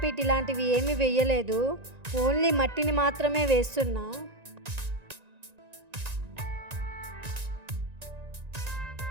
ఇలాంటివి ఏమీ వేయలేదు, ఓన్లీ మట్టిని మాత్రమే వేస్తున్నా.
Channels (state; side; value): late; left; 1.9 ms